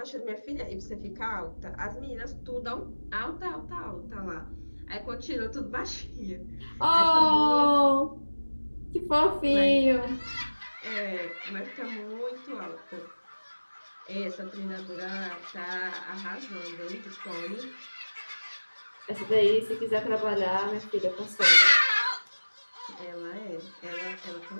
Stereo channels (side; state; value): both; inverted; correlation -1.00